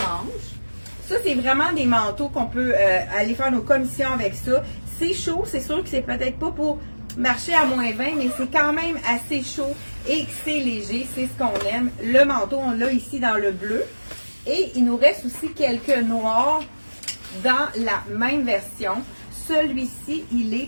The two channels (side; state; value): both; inverted; correlation -1.00